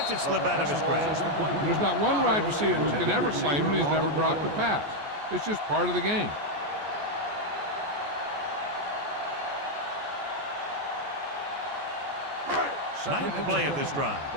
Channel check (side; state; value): left; late; 14 ms